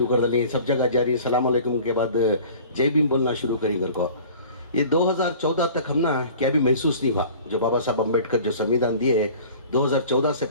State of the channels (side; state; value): both; inverted; correlation -0.45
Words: कर दिली, सब जगह जारी सलाम अलैकुम के बाद जय भीम बोलना शुरू करी घर को। ये 2014 तक हम ना क्या भी महसूस नहीं हुआ, जो बाबा साहब अम्बेडकर जो संविधान दिए 2014 से